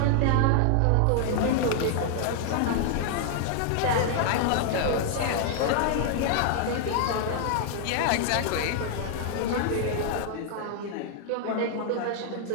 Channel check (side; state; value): both; different; correlation 0.00